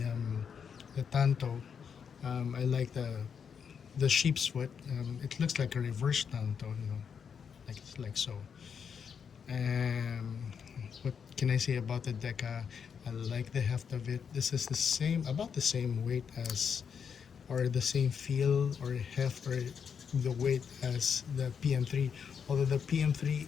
tanto, I like the sheep's foot. It looks like a reverse tanto, you know, like so. What can I say about the Deka? I like the heft of it. This is about the same weight as, or the same feel or heft, or the weight as the PM3, although the PM3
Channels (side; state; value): right; quieter; 6.9 dB